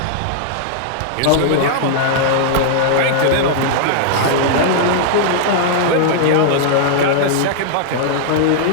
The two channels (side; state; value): both; different; correlation -0.01